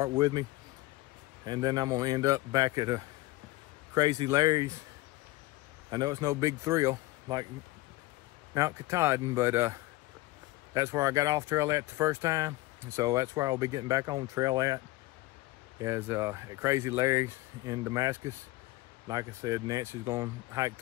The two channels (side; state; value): right; quieter; 18.9 dB